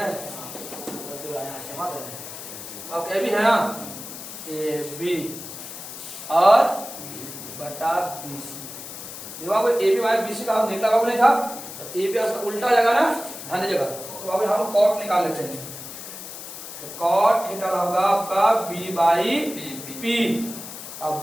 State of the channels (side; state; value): left; noise; hiss, 11 dB below the sound